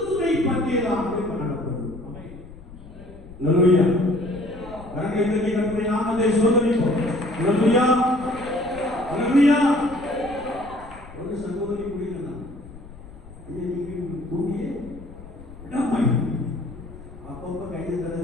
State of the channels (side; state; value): left; noise; rumble, 18 dB below the sound